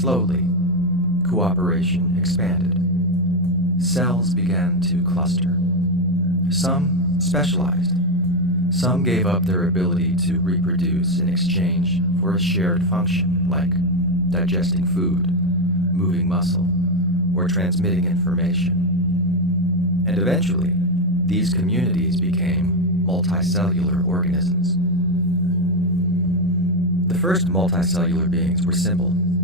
cooperation expanded. Cells began to cluster. Some specialized. Some gave up their ability to reproduce in exchange for a shared function like digesting food, moving muscle, or transmitting information. And eventually, these communities became multicellular organisms. The first multicellular beings were simple:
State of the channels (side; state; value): both; normal; correlation 0.07